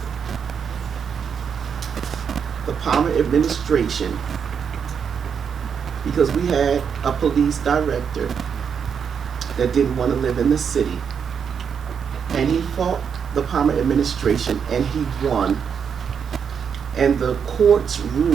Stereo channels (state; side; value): quieter; left; 7.0 dB